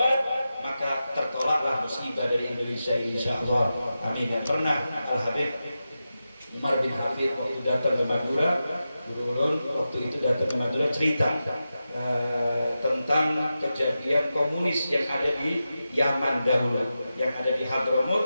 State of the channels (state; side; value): inverted; both; correlation -0.92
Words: maka tertolaklah musibah dari Indonesia ini insyaallah. Amin. Yang pernah Al-Habib Umar bin Hafid waktu datang ke Madura, guru ulun waktu itu datang ke Madura cerita tentang kejadian komunis yang ada di Yaman dahulu, yang ada di